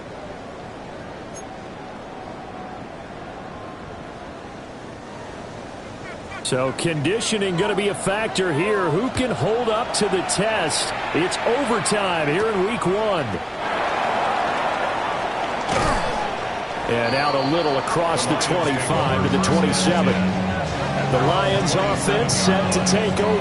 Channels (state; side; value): identical; both; correlation 1.00